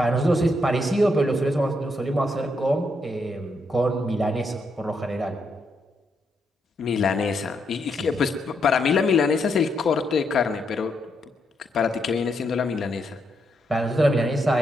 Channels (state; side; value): normal; both; correlation 0.78